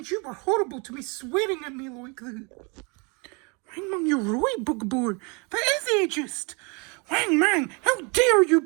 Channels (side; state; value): left; quieter; 31.5 dB